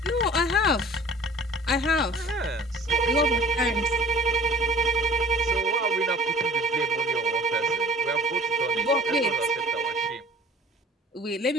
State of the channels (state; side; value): normal; both; correlation 0.47